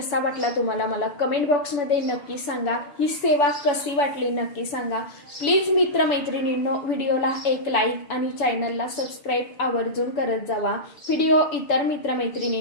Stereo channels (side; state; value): right; late; 7.0 ms